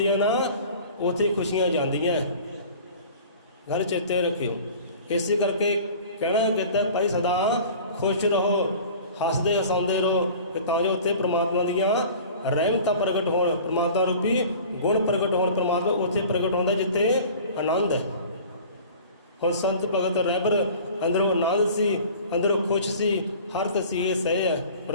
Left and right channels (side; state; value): both; inverted; correlation -0.43